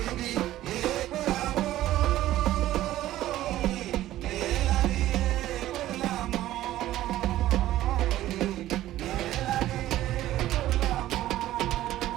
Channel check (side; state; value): left; quieter; 14.3 dB